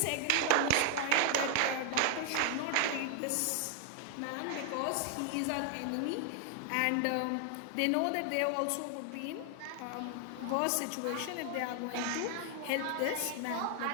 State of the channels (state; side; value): different; both; correlation 0.00